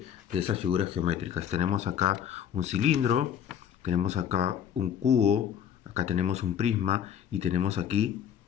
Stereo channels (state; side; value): quieter; right; 9.2 dB